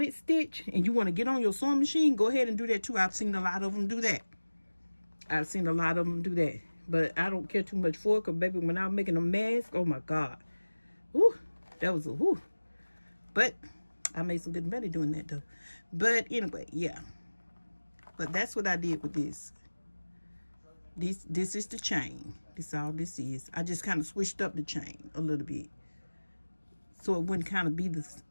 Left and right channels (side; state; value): both; inverted; correlation -1.00